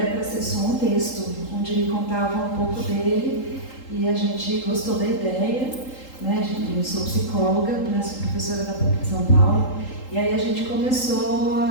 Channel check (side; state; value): right; late; 3.8 ms